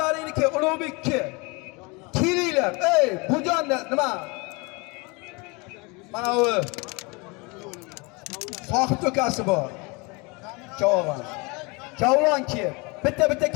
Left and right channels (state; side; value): quieter; right; 28.1 dB